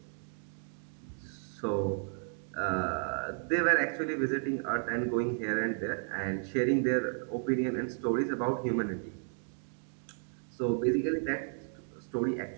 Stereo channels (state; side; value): silent; left; 55 dB below the other